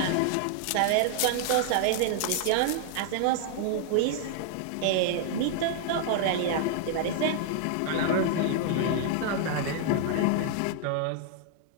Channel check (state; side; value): different; both; correlation 0.00